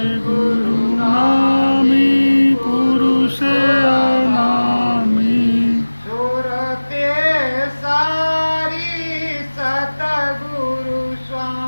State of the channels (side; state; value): both; inverted; correlation -1.00